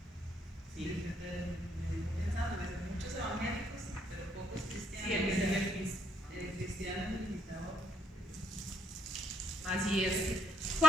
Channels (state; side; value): normal; both; correlation 0.71